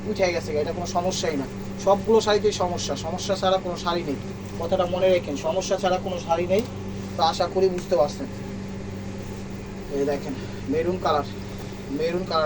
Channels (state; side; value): identical; both; correlation 1.00